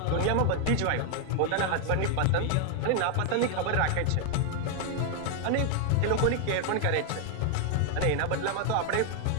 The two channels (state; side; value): different; both; correlation 0.01